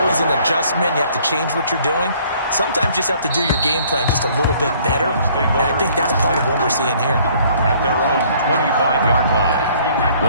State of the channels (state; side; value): inverted; both; correlation -0.59